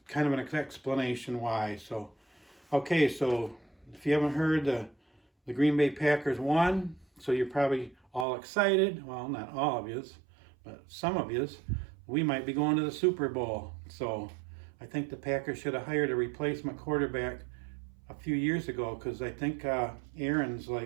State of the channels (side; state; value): left; drops out; at 8.2 s